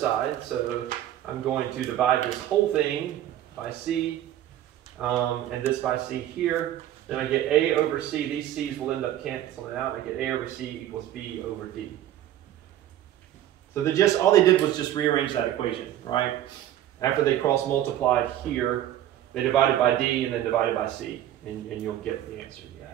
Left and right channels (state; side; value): quieter; left; 12.3 dB